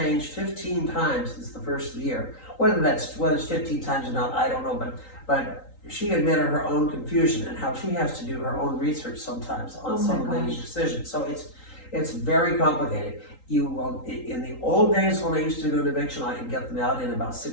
15 times since the first year. Whether it's 15 times or not, I don't know, but she admitted her own confusion and how she has to do her own research sometimes on some of the decisions. So it's very complicated. You will, in the old days when I used to do an eviction, I could get them out in about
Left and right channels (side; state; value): right; late; 3.8 ms